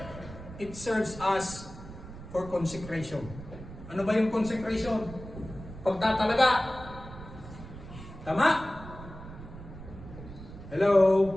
it serves us for consecration. Ano ba yung consecration? Pagtatalaga. Tama? Hello?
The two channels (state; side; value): noise; right; rumble, 14 dB below the sound